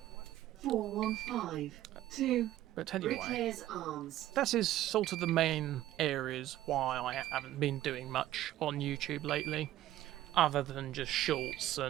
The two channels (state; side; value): quieter; left; 14.1 dB